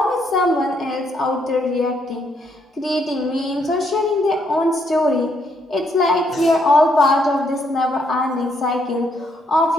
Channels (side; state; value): both; normal; correlation 0.73